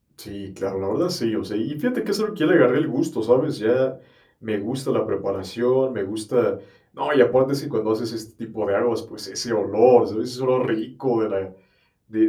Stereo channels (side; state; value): both; identical; correlation 1.00